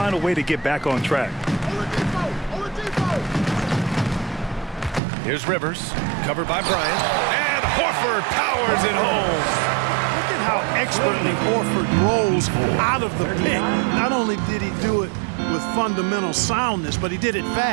a way to get back on track. Here's Rivers, covered by Bryant. And Horford powers it home. Look at how expertly Horford rolls out of the pick. Not only did he do it with fundamental soundness, but he did it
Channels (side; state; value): left; drops out; at 5.0 s